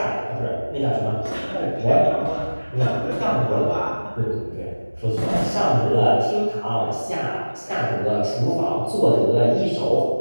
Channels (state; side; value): inverted; both; correlation -1.00